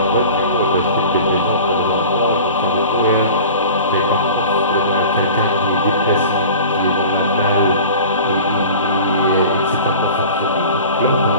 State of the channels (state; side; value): inverted; both; correlation -0.40